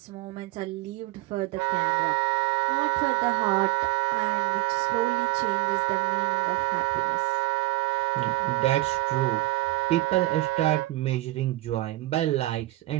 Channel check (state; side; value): quieter; left; 18.5 dB